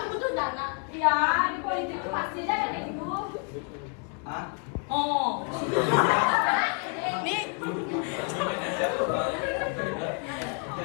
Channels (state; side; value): quieter; right; 37.6 dB